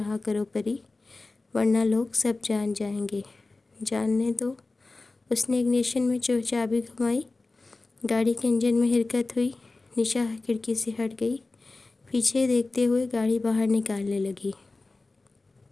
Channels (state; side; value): quieter; right; 3.4 dB